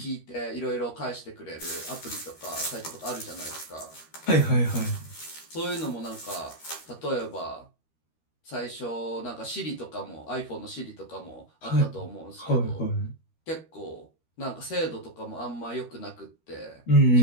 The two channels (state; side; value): late; right; 13 ms